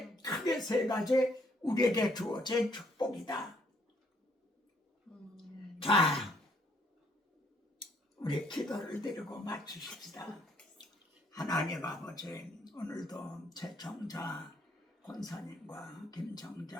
크게 세 가지 우리에게 주어진 축복이다. 자, 우리 기도를 드리고 마치십시다. 하나님 아버지, 오늘도 최청자 권사님과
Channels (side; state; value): both; normal; correlation 0.67